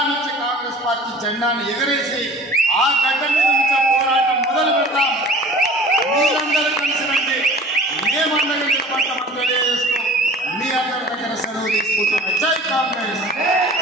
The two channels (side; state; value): both; normal; correlation 0.43